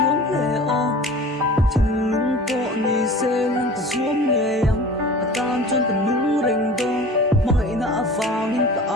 lệ o thiên lung bộ ni xê lăng cái xuống nghe yang tan cho con nung rèn đôn mày na vàng in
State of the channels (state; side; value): normal; both; correlation 0.40